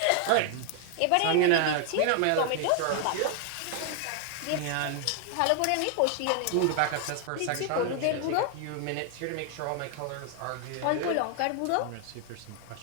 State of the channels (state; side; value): different; both; correlation 0.00